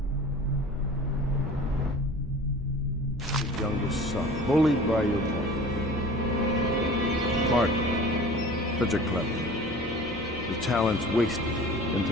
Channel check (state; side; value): normal; both; correlation 0.42